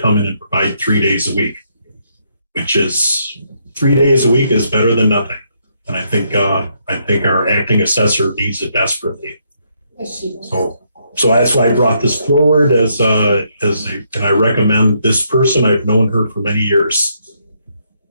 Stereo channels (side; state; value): both; inverted; correlation -0.75